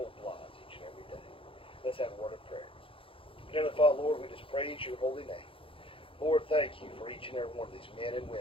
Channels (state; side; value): late; right; 0.26 ms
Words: lies each and every day. Let's have a word of prayer. Heavenly Father, Lord, we just praise Your holy name. Lord, thank You for each and every one of these men and